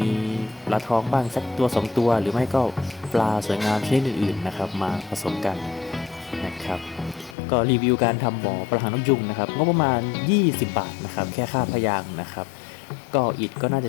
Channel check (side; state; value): right; drops out; at 7.4 s